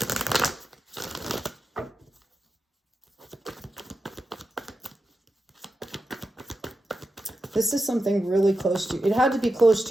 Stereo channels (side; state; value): both; normal; correlation 0.89